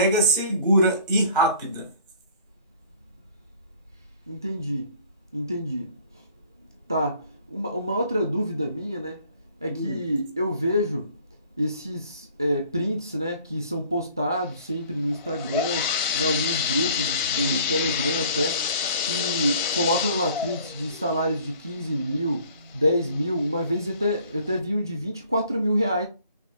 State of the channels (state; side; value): inverted; both; correlation -0.54